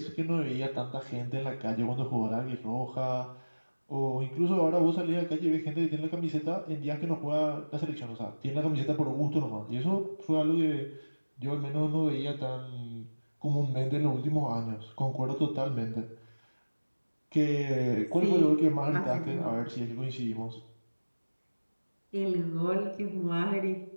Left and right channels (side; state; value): both; inverted; correlation -1.00